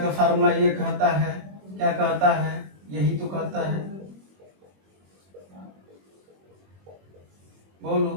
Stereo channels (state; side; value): late; left; 21 ms